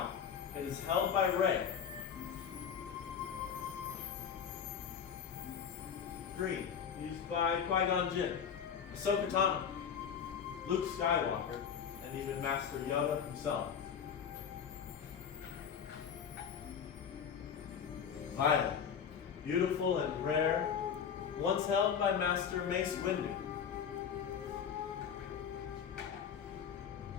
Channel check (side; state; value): right; quieter; 7.6 dB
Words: it is held by Rey. Green, used by Qui-Gon Jinn, Ahsoka Tano, Luke Skywalker, and even Master Yoda himself. Violet, beautiful and rare, once held by Master Mace Windu.